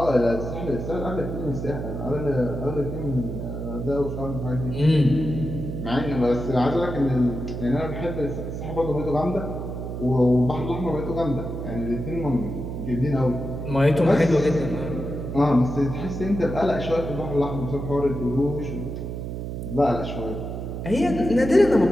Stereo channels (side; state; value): right; noise; hum, 6 dB below the sound